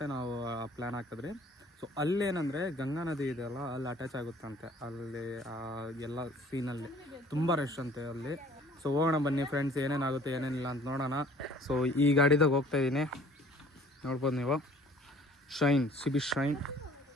ನಾವು ಪ್ಲ್ಯಾನ್ ಹಾಕಿದ್ರಿ. ಸೊ ಅಲ್ಲೇನಂದರೆ ಗಂಗಾ ನದಿ ಇದೆಯಲ್ಲ, ಅಲ್ಲಿ ಅಟ್ಯಾಚ್ ಆಗುತ್ತಂತೆ. ಅಲ್ಲಿ ಎಲ್ಲ ಸೀನಲ್ಲಿ ತುಂಬ ರಶ್ ಅಂತೆ ಅಲ್ಲಿ. ಸೊ ಹೋಗೋಣ ಬನ್ನಿ ಫ್ರೆಂಡ್ಸ್, ಏನೇನಾಗುತ್ತೆ ಏನೇನಿಲ್ಲ ಅಂತ ನೋಡೋಣ. ಸೊ ಈ ಗಾಡಿದಾಗ ಹೋಗ್ತಾ ಇದ್ದೀನಿ, ನೋಡ್ಬೋದು ನೀವು, ಶೈನ್ ಸಿಬಿ ಶೈನ್.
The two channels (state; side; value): normal; both; correlation 0.53